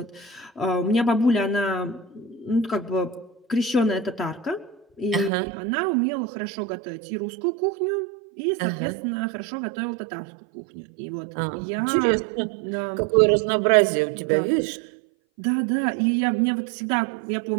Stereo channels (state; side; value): drops out; left; at 5.3 s